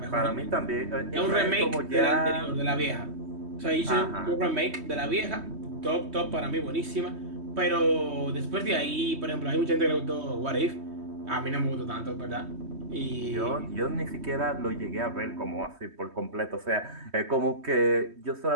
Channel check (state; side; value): late; left; 3.2 ms